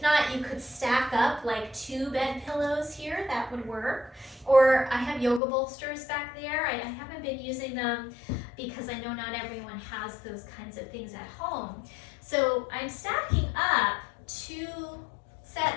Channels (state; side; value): drops out; right; at 5.4 s